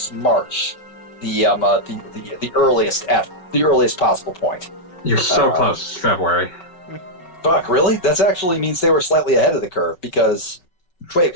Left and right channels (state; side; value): late; right; 5.3 ms